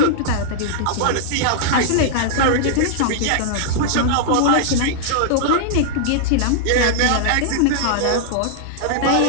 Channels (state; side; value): different; both; correlation -0.01